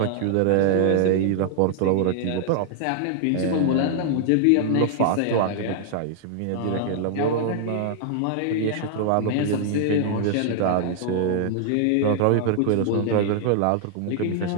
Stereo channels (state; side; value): different; both; correlation -0.01